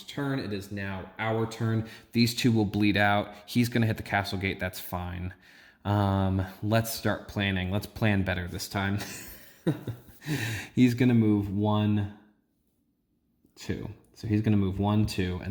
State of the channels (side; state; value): both; identical; correlation 1.00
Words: turn. It is now our turn. These 2 will bleed out. He's going to hit the castle gate. That's fine. Let's start planning. Let's plan better this time. He's going to move 1, 2. So he's going to move 1, 2,